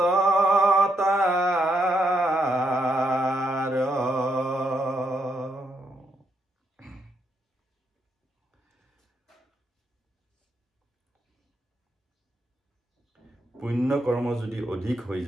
তাৰ। পুণ্য কৰ্ম যদি অধিক হৈ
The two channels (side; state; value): both; normal; correlation 0.79